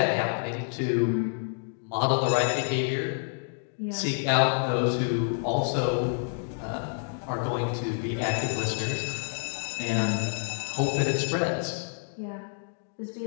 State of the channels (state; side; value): silent; right; digital silence